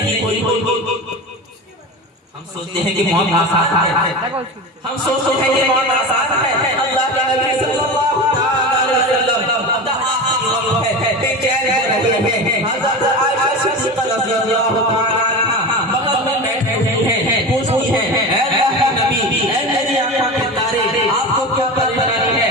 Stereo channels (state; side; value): normal; both; correlation 0.27